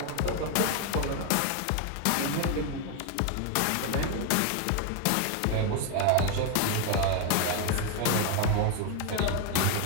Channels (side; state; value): both; different; correlation 0.01